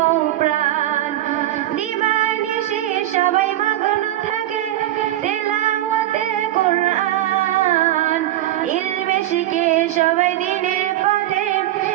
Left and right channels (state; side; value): quieter; left; 13.9 dB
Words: প্রাণ দিবানিশি সবাই মগ্ন থাকে তেলাওয়াতে কোরআন ইলমে শিখে সবাই দিনের পথে